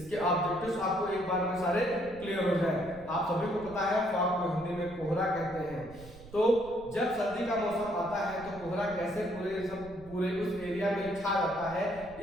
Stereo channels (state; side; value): noise; right; rumble, 19 dB below the sound